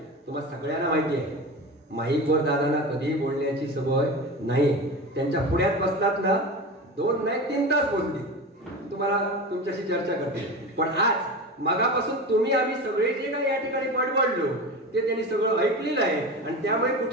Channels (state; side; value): normal; both; correlation 0.27